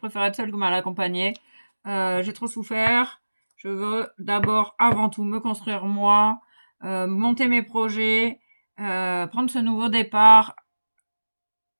être seule que mal accompagnée. J'ai trop souffert. Je veux d'abord, avant tout, me construire moi, monter mes projets, prendre ce nouveau départ,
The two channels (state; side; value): inverted; both; correlation -1.00